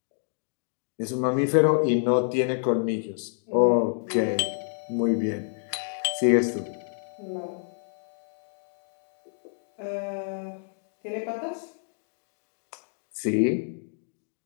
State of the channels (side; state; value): right; silent; digital silence